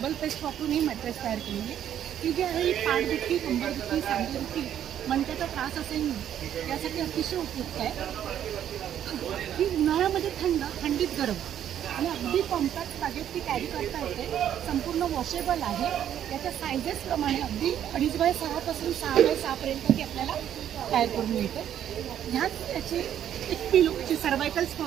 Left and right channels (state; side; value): quieter; left; 10.3 dB